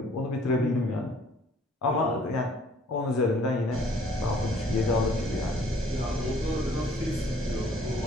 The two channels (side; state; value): both; normal; correlation 0.58